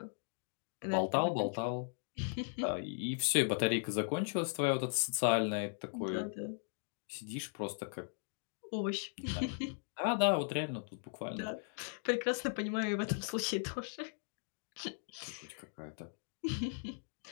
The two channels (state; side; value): silent; right; digital silence